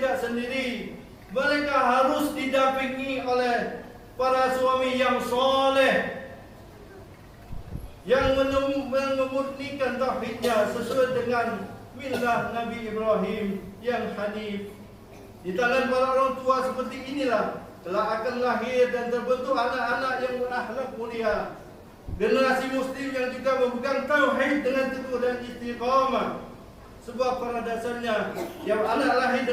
sendiri. Mereka harus didampingi oleh para suami yang soleh, yang memurnikan tauhidnya sesuai dengan millah Nabi Ibrahim yang hanif. Di tangan para orang tua seperti inilah telah akan lahir dan terbentuk anak-anak yang berakhlak mulia, generasi muslim yang juga memegang tauhid dengan teguh dan istiqamah. Sebab pada dasarnya yang anak lahir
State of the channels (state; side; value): identical; both; correlation 1.00